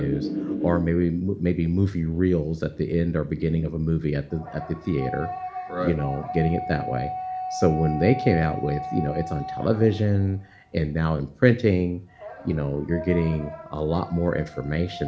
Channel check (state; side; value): identical; both; correlation 1.00